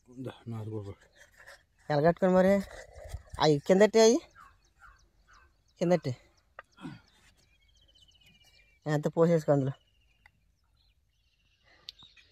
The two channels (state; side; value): identical; both; correlation 1.00